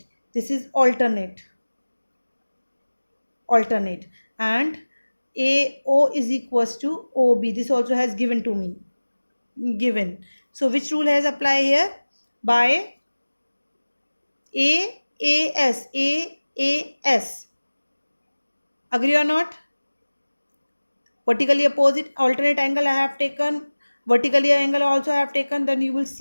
this is alternate, and AO is equals to OB, this also has given to me, So which rule has applied here? By AAS. Agree or not? Vertically opposite, alternate angle I have taken, vertically angle also I have taken. Then you will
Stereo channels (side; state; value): both; inverted; correlation -1.00